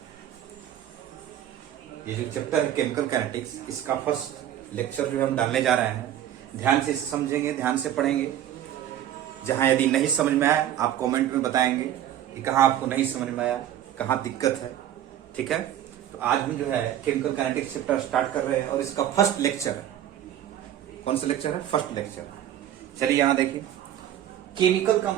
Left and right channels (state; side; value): quieter; left; 11.3 dB